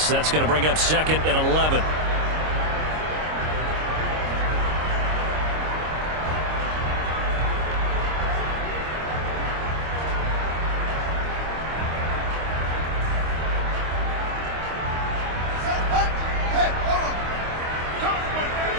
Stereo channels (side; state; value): left; late; 26 ms